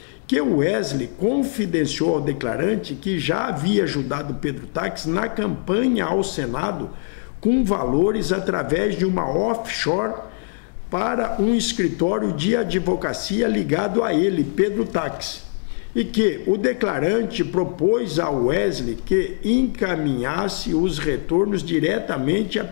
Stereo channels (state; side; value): silent; right; digital silence